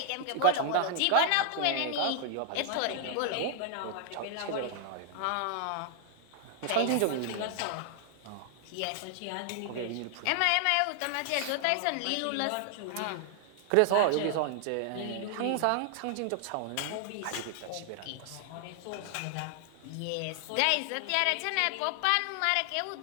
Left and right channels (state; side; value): different; both; correlation 0.00